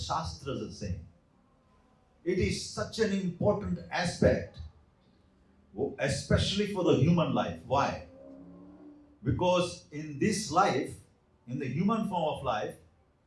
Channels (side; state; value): both; identical; correlation 1.00